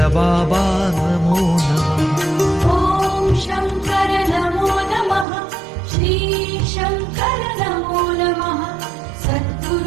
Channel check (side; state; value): left; drops out; at 5.2 s